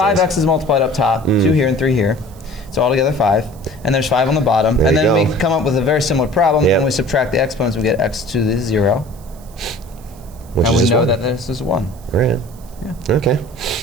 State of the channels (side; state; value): right; noise; hiss, 25 dB below the sound